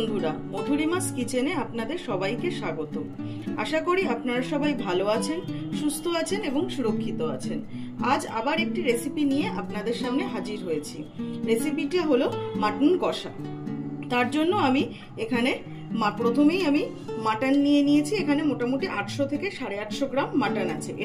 মধুরিমাস কিচেনে আপনাদের সবাইকে স্বাগত। আশা করি আপনারা সবাই ভালো আছেন, সুস্থ আছেন এবং সুরক্ষিত আছেন। আজ আবার একটি রেসিপি নিয়ে আপনাদের সামনে হাজির হয়েছি। রেসিপিটা হলো মাটন কষা। তার জন্য আমি এখানে প্রথমেই আমি মাটন নিয়ে নিয়েছি। এখানে মোটামুটি 800 থেকে 850 গ্রাম মাটন আছে।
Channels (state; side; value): identical; both; correlation 1.00